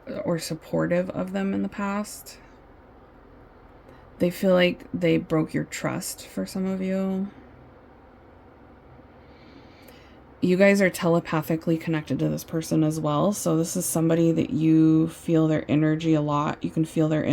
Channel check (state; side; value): identical; both; correlation 1.00